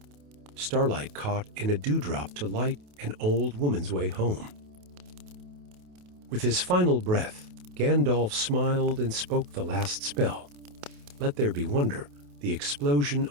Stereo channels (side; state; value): left; late; 28 ms